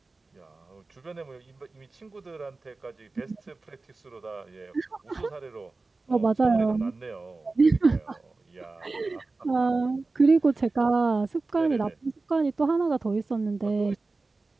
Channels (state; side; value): quieter; left; 3.6 dB